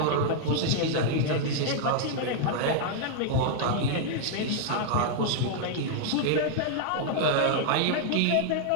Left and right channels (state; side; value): different; both; correlation -0.01